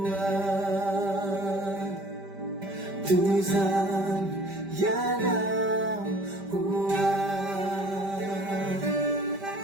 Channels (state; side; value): late; left; 5.1 ms